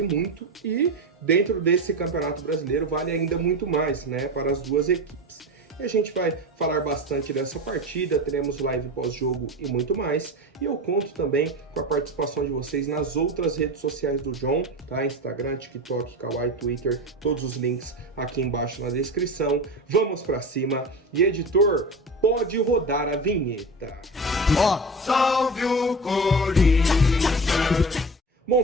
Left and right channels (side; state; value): both; normal; correlation 0.27